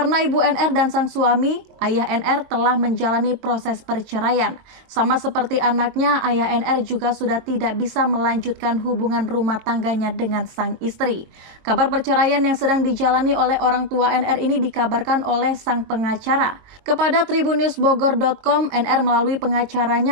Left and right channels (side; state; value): left; late; 22 ms